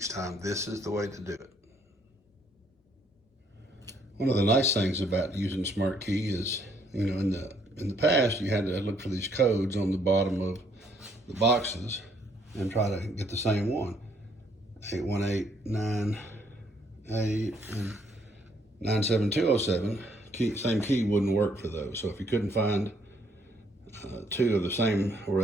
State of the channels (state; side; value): normal; both; correlation 0.68